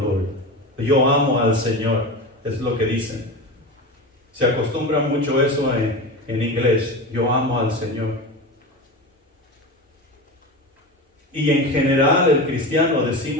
Lord, yo amo al Señor, es lo que dicen. Se acostumbra mucho eso en inglés, yo amo al Señor. Y en general el cristiano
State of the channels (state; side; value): normal; both; correlation 0.25